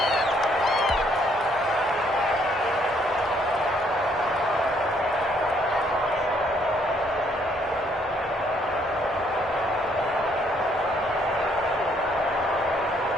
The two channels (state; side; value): normal; both; correlation 0.67